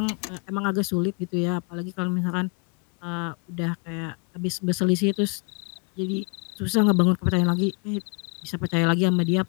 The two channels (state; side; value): quieter; right; 34.9 dB